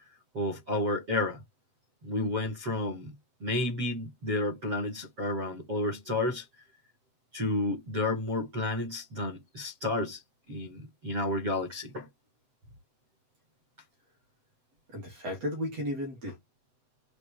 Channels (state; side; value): late; left; 7.9 ms